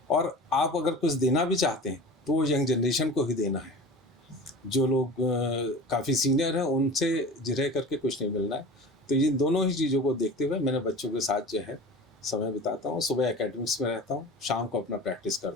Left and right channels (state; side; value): normal; both; correlation 0.36